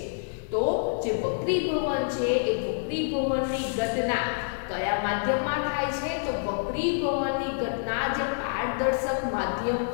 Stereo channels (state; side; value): silent; right; digital silence